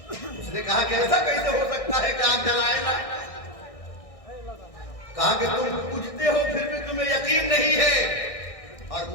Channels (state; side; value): late; right; 1.6 ms